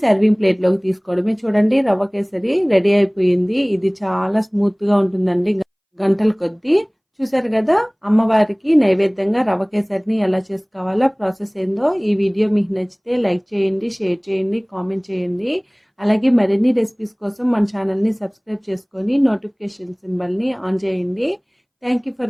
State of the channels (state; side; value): identical; both; correlation 1.00